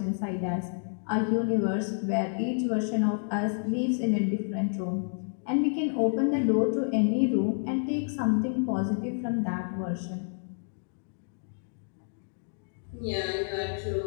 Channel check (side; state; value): right; silent; digital silence